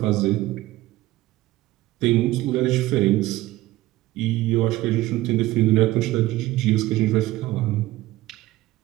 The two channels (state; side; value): quieter; left; 17.1 dB